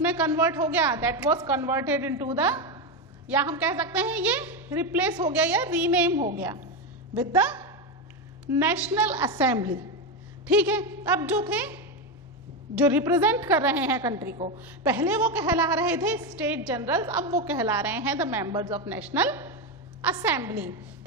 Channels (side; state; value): both; normal; correlation 0.11